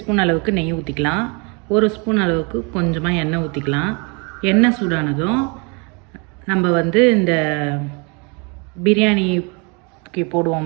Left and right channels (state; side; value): quieter; left; 32.4 dB